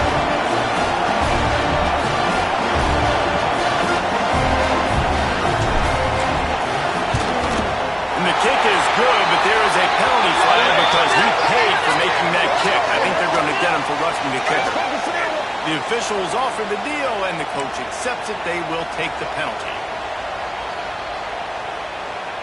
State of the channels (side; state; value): both; identical; correlation 1.00